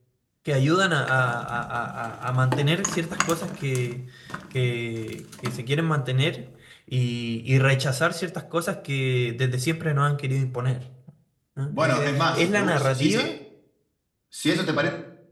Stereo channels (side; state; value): both; identical; correlation 1.00